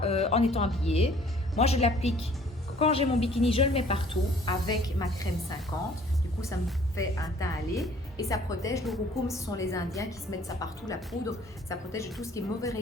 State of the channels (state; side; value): normal; both; correlation 0.56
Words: en étant habillé. Moi je l'applique quand j'ai mon bikini, je le mets partout avec ma crème 50. Du coup ça me fait un teint allé et ça protège. L'urucum, ce sont les Indiens qui se mettent ça partout, la poudre, ça protège de tout ce qui est mauvais